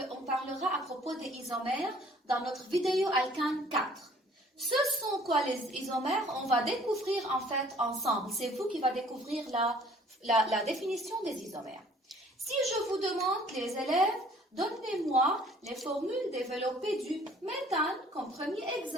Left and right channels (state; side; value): normal; both; correlation 0.56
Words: à propos des isomères dans notre vidéo alkane 4. Ce sont quoi les isomères? On va découvrir en fait ensemble. C'est vous qui va découvrir la définition des isomères. Si je vous demande, les élèves, donnez-moi les formules développées du méthane comme premier